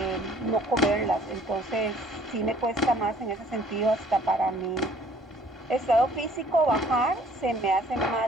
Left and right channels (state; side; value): normal; both; correlation 0.57